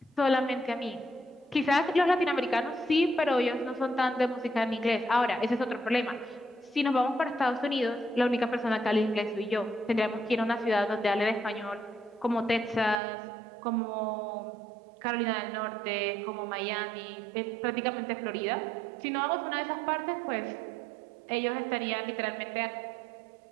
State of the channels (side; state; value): left; drops out; at 13.0 s